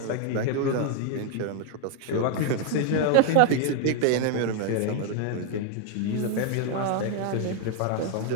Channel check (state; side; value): different; both; correlation 0.00